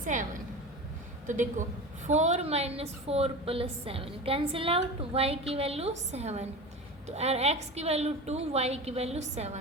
7। तो देखो 4 minus 4 plus 7 cancel out, y की वैल्यू 7, तो x की वैल्यू 2, y की वैल्यू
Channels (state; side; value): normal; both; correlation 0.30